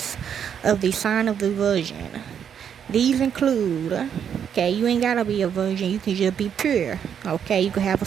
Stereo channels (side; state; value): left; quieter; 8.2 dB